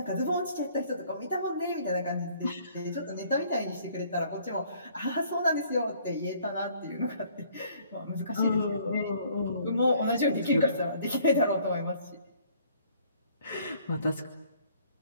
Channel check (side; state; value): both; inverted; correlation -0.59